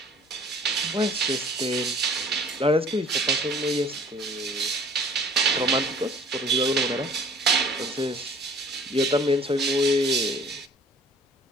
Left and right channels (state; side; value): normal; both; correlation 0.51